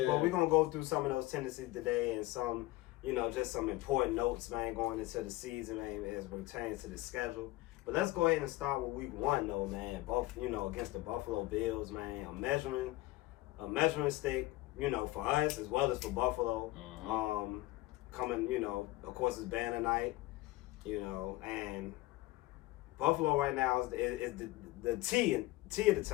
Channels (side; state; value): right; quieter; 18.9 dB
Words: But we're gonna go through some of those tendencies today and some, you know, just some important notes, man, going into the season, man, as it pertains to the schedule. But let's go ahead and start with week 1 though, man. Both, you know, against the Buffalo Bills, man. A measuring stick, you know, for us as well as for Buffalo. Coming, you know, of course it's banner night, you know, and Buffalo right now is the T of the